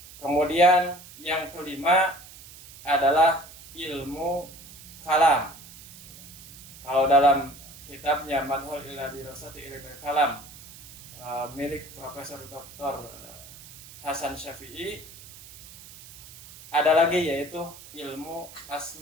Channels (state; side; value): noise; right; hiss, 18 dB below the sound